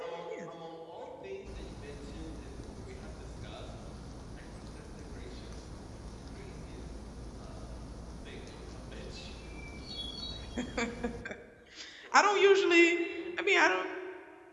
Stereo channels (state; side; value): identical; both; correlation 1.00